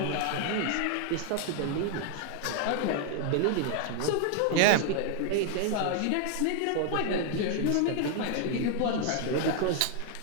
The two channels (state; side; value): different; both; correlation 0.00